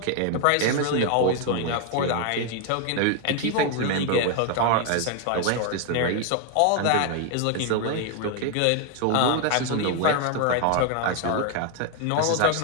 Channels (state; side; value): different; both; correlation 0.00